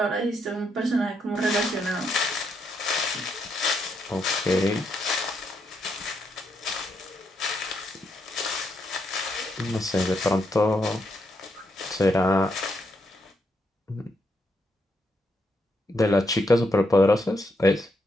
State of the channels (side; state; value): both; normal; correlation 0.78